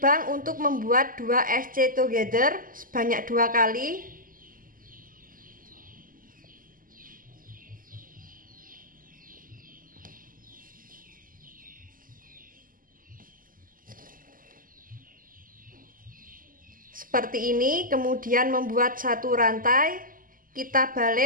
untuk membuat 2 SC together sebanyak 2 kali. Seperti ini, kemudian membuat 1 rantai, kita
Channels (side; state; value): left; late; 0.41 ms